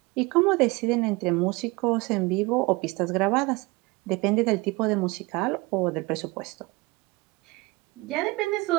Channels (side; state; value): left; quieter; 24.1 dB